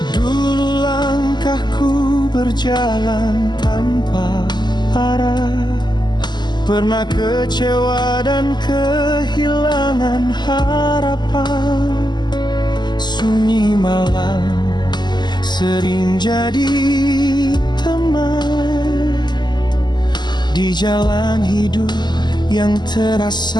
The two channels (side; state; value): right; late; 0.21 ms